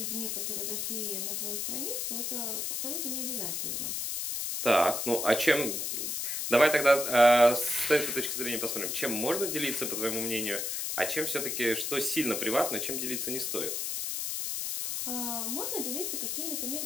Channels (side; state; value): left; noise; hiss, 2 dB below the sound